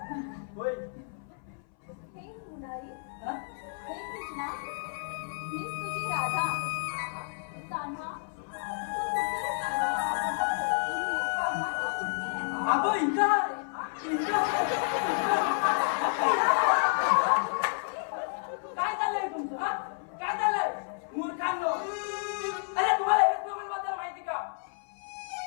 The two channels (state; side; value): silent; right; 57 dB below the other